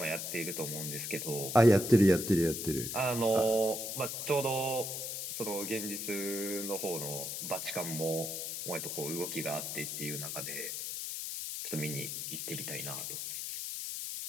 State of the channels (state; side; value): noise; left; hiss, 4 dB below the sound